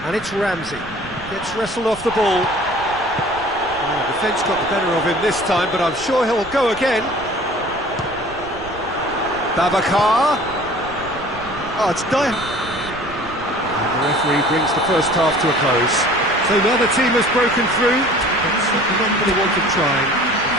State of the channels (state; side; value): noise; right; rumble, 18 dB below the sound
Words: And it's Ramsey. Gets wrestled off the ball. Oh, the defence got the better of him this time, but I'm sure he'll go again. Babacar. Oh, it's done. And the referee brings the first half to a close. So now the team has broken through. It's certainly not going to want to try.